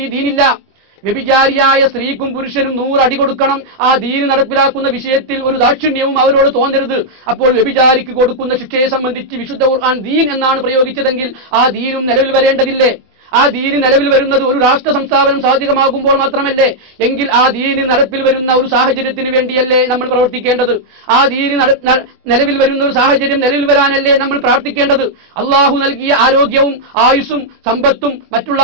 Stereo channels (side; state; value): left; late; 23 ms